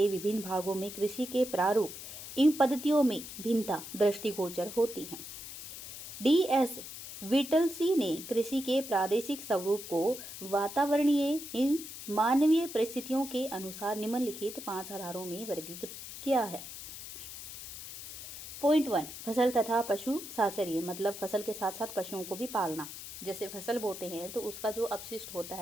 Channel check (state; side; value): noise; left; hiss, 11 dB below the sound